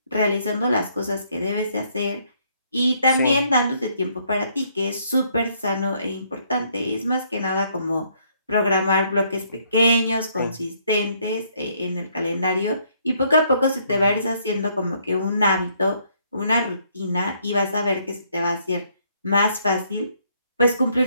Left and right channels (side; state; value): both; inverted; correlation -0.68